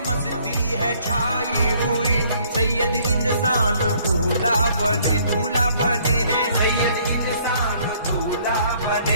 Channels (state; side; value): inverted; both; correlation -0.62